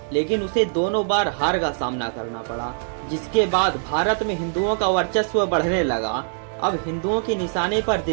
लेकिन उसे दोनों बार हार का सामना करना पड़ा। जिसके बाद भारत में हिंदुओं का वर्चस्व बढ़ने लगा। अब हिंदुओं के निशाने पर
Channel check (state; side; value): silent; left; digital silence